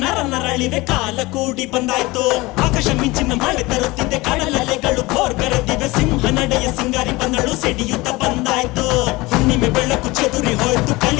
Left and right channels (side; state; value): right; quieter; 21.8 dB